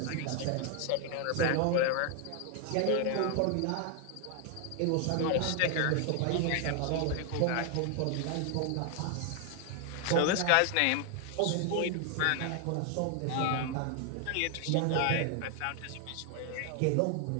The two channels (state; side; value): different; both; correlation 0.00